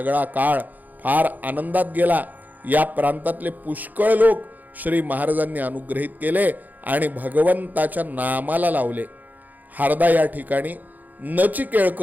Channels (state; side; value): late; left; 0.083 ms